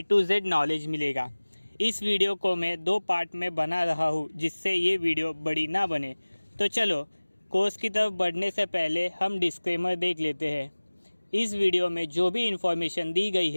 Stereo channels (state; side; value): inverted; both; correlation -1.00